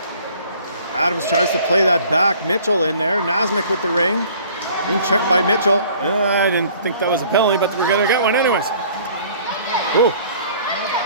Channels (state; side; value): inverted; both; correlation -0.53